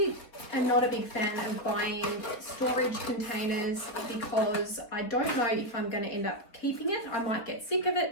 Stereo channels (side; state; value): right; late; 4.0 ms